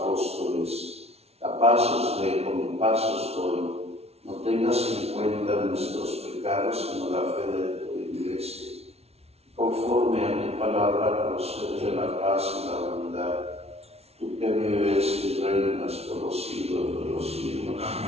a paz os dejo, mi paz os doy. No tengas en cuenta nuestros pecados, sino la fe de tu Iglesia. Conforme a tu palabra, concede la paz y la unidad. Tú que vives y reinas por los siglos de los siglos.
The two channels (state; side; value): late; left; 0.30 ms